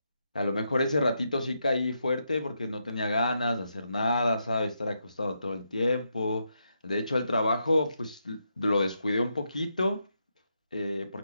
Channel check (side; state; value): both; inverted; correlation -0.82